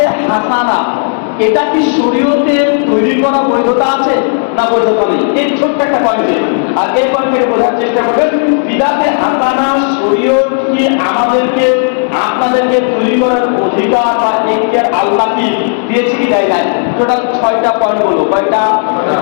হাসানা, এটা কি শরীয়তে তৈরি করা বৈধতা আছে না বৈধতা নেই, এই ছোট্ট একটা পয়েন্টে। আর এই পয়েন্ট থেকে বোঝার চেষ্টা করবেন বিদাতে হাসানা শরীয়ত কি আমাদেরকে আপনাদেরকে তৈরি করার অধিকার বা এখতিয়ার আল্লাহ কি দিয়েছে কি দেয় নাই? টোটাল 6টা পয়েন্ট বলো। কয়টা?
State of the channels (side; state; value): right; silent; digital silence